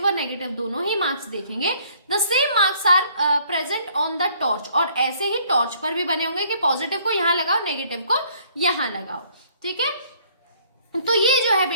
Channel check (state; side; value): inverted; both; correlation -0.61